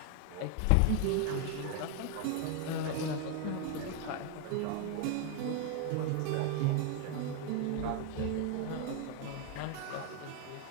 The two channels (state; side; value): different; both; correlation 0.01